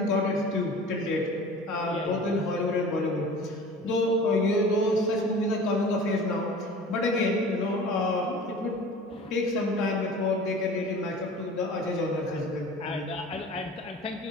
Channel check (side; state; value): both; normal; correlation 0.41